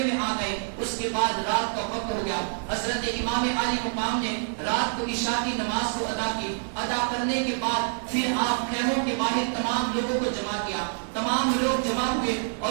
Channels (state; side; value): silent; left; 60 dB below the other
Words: میں آ گئے. اس کے بعد رات کا وقت ہو گیا. حضرت امام عالی مقام نے رات کو عشاء کی نماز کو ادا کی. ادا کرنے کے بعد پھر آپ خیموں کے باہر تمام لوگوں کو جمع کیا. تمام لوگ جمع ہوئے